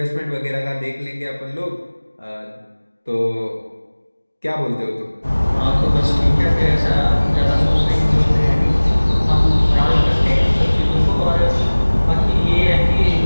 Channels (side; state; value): both; inverted; correlation -1.00